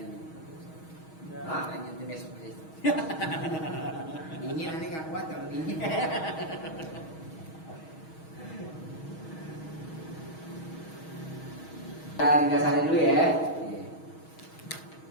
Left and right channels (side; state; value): right; late; 6.3 ms